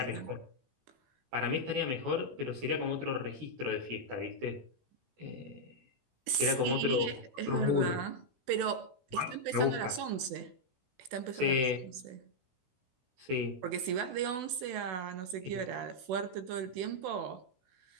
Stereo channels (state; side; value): late; left; 16 ms